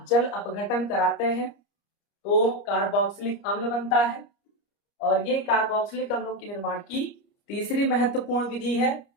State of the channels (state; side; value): late; right; 30 ms